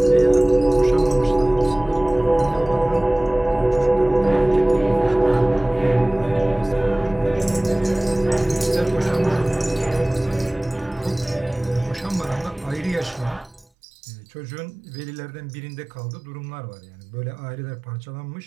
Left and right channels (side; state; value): left; drops out; at 13.7 s